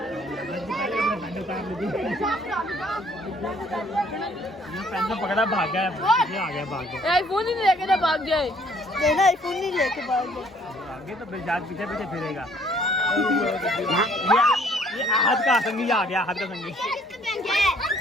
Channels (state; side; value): normal; both; correlation 0.61